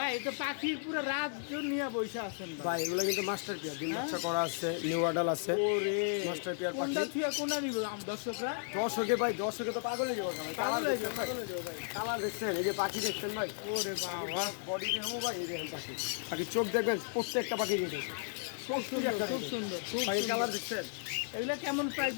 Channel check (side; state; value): right; silent; digital silence